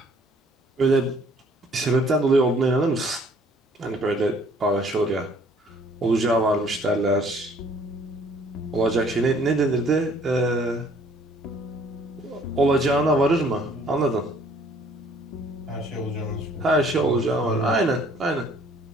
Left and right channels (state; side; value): normal; both; correlation 0.59